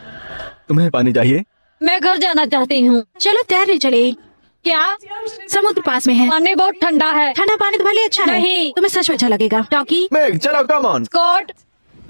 तुम्हें पानी चाहिए? मैं घर जाना चाहती हूँ। चलो तैरने चले। क्या? समुद्र पास में है। पानी बहुत ठंडा है। ठंडा पानी तुम्हारे लिए अच्छा है। नहीं। तुम्हें सच में अच्छा लगेगा। टॉकी, मेघ, चलो, कम ऑन। कोर्ट?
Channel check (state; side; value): inverted; both; correlation -1.00